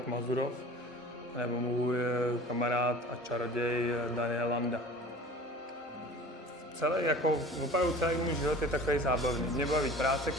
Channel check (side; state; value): both; normal; correlation 0.42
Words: Mazurov, nebo můj kamarád a čaroděj Daniel Landa. Opravdu celý můj život je takový zábavný. Mě baví práce,